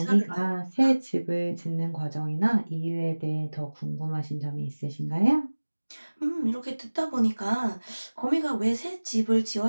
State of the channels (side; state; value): both; inverted; correlation -1.00